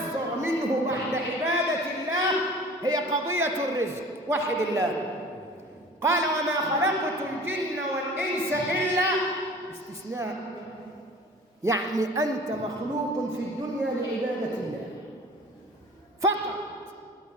منه بعد عبادة الله هي قضية الرزق. وحد الله. قال: وما خلقت الجن والإنس إلا، استثناء، يعني أنت مخلوق في الدنيا لعبادة الله فقط.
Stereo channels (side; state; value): both; normal; correlation 0.44